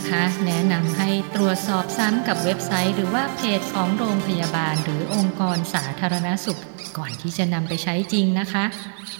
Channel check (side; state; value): left; silent; digital silence